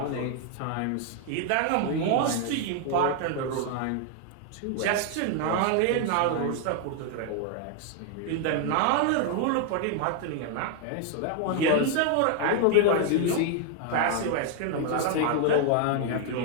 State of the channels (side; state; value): both; different; correlation 0.00